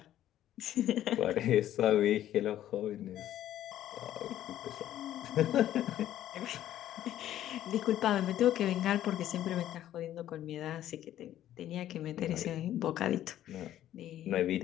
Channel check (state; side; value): quieter; right; 12.3 dB